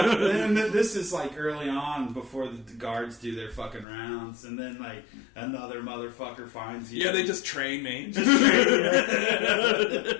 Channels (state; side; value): drops out; right; at 3.9 s